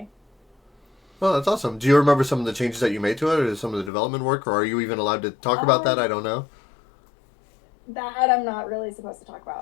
Well, that's awesome. Do you remember some of the changes that you made to it, or some of the development work, or are you even allowed to talk about that? I don't know. That I'm not really supposed to talk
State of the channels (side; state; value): right; drops out; at 3.9 s